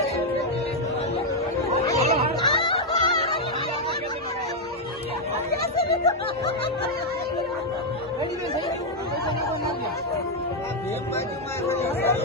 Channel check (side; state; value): both; normal; correlation 0.00